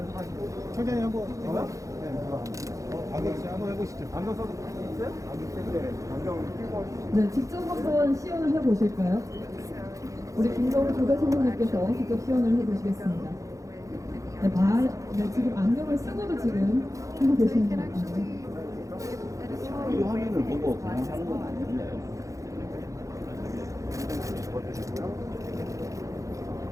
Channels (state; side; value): late; left; 0.16 ms